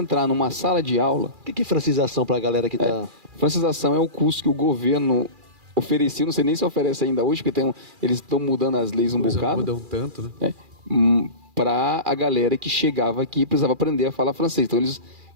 numa sala de aula. O que é francização para a galera que tá... Francização é o curso que o governo oferecia, não sei nem se oferece ainda hoje, porque eles estão mudando as leis um bocado. Mudam tanto, né? Para a galera que chegava aqui e precisava aprender a falar francês.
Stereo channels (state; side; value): late; left; 2.4 ms